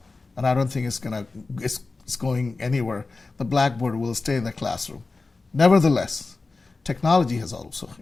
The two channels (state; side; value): quieter; right; 3.7 dB